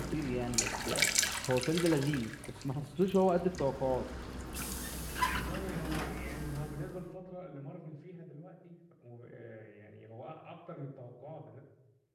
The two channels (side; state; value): both; identical; correlation 1.00